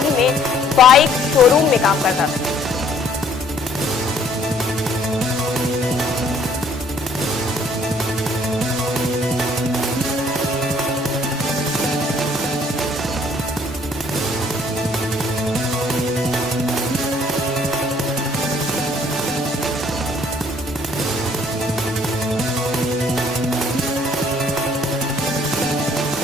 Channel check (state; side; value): normal; both; correlation 0.61